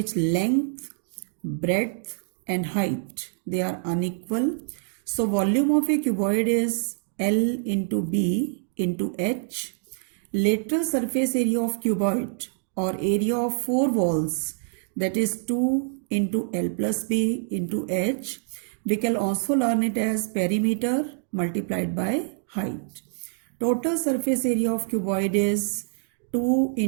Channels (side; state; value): left; silent; digital silence